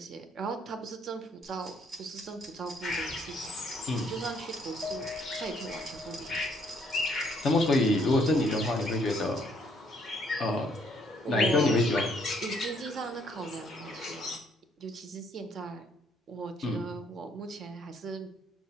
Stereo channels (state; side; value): normal; both; correlation 0.67